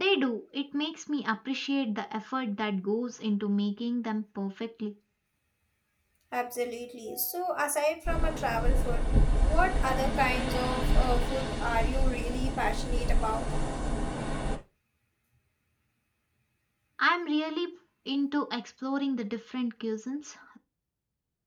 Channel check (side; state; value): both; identical; correlation 1.00